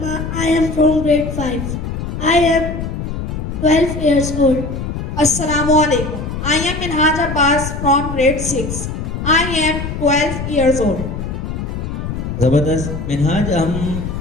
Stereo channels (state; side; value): noise; left; rumble, 5 dB below the sound